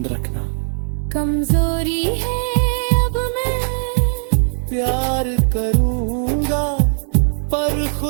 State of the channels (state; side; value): silent; left; digital silence